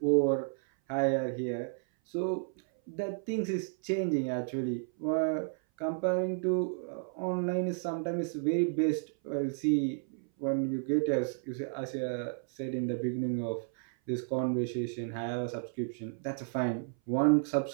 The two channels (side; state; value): left; silent; 56 dB below the other